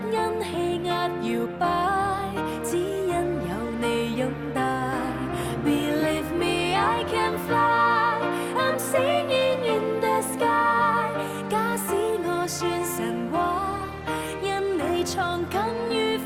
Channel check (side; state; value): both; identical; correlation 1.00